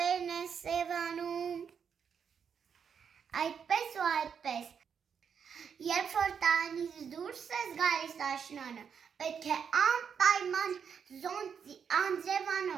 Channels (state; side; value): quieter; left; 7.1 dB